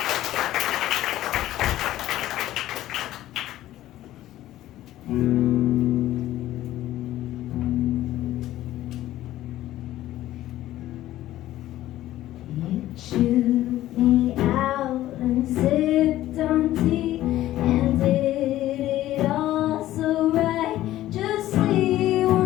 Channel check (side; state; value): right; quieter; 14.4 dB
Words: You chewed me out and sipped on tea and did it all so right. Just we